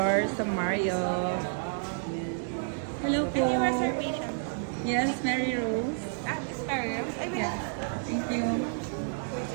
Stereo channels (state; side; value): silent; left; digital silence